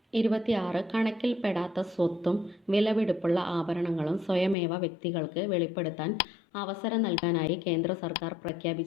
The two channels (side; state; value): right; drops out; at 4.5 s